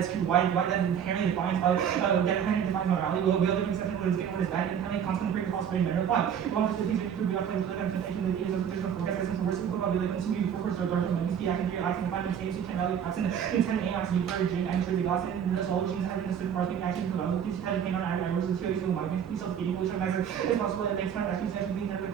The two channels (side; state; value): left; quieter; 8.4 dB